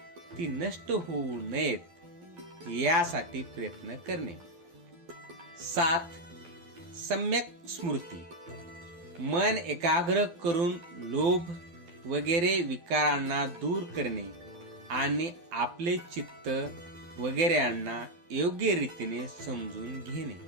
ती नष्ट होऊ नयेत यासाठी प्रयत्न करणे. 7. सम्यक स्मृती. मन एकाग्र करून लोभ वगैरे विकारांना दूर करणे आणि आपले चित्त वगैरेंना योग्य रीतीने समजून घेणे.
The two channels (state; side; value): late; left; 12 ms